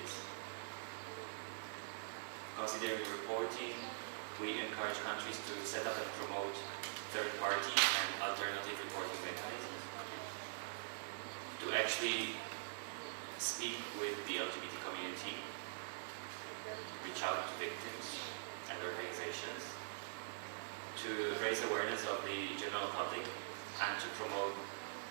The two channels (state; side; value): silent; left; digital silence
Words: is. Considering reporting, we encourage countries to set up and promote third-party and alternative reporting mechanisms, to actually speak with the LGBT community, reach out to victims and organizations, to raise awareness of the general public, and to promote